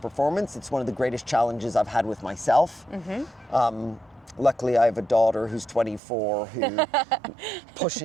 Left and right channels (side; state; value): left; drops out; at 6.0 s